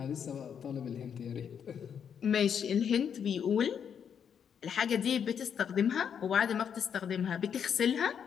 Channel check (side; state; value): right; quieter; 7.8 dB